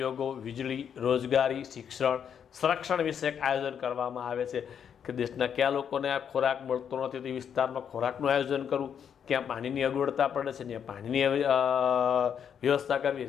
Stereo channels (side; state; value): right; quieter; 8.0 dB